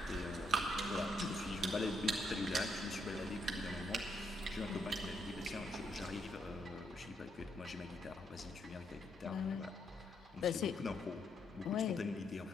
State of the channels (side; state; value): both; normal; correlation 0.76